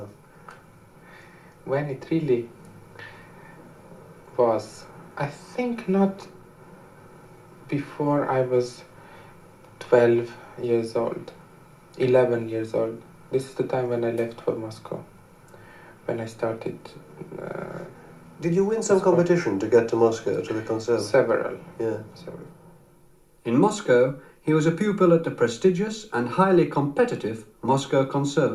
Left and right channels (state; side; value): identical; both; correlation 1.00